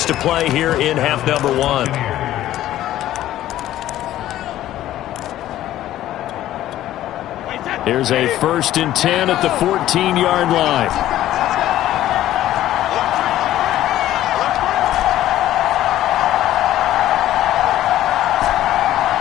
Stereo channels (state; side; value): quieter; right; 13.5 dB